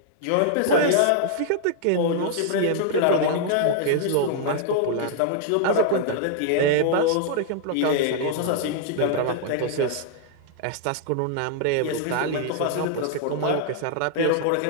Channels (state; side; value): different; both; correlation -0.01